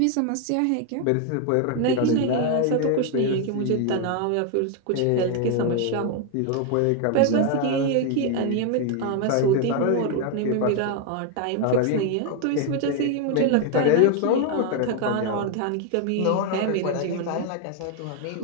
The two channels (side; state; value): both; different; correlation 0.01